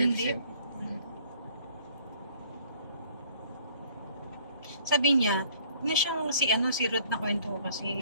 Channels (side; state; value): both; inverted; correlation -0.57